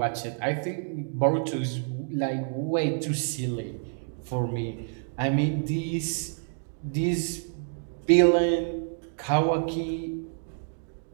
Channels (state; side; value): silent; left; digital silence